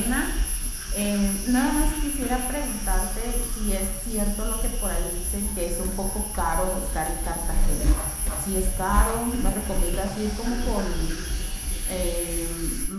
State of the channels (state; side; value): identical; both; correlation 1.00